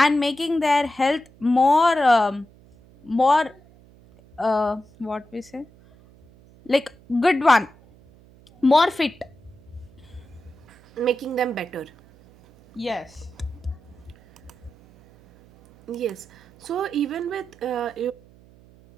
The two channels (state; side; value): noise; right; hum, 26 dB below the sound